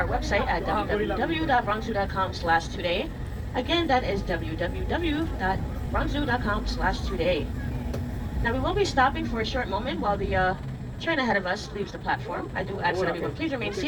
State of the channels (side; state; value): both; identical; correlation 1.00